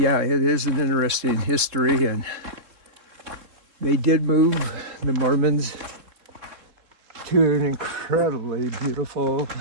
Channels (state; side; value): late; left; 3.7 ms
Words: it is an interesting history, and they did move, the Mormons, to an incredibly beautiful